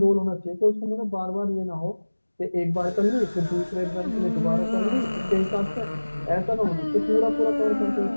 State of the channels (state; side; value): inverted; both; correlation -1.00